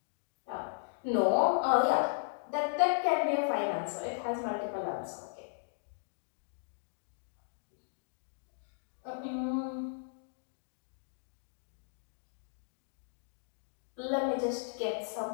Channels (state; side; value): silent; right; digital silence